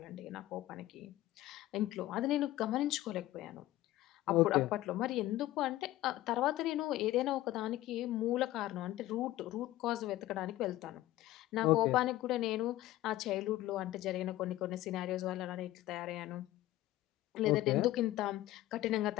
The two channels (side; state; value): right; quieter; 15.8 dB